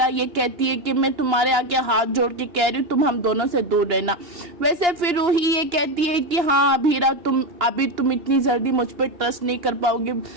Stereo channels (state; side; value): late; left; 2.9 ms